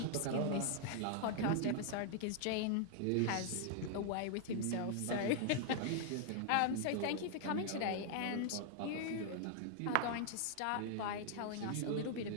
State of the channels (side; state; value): both; different; correlation 0.00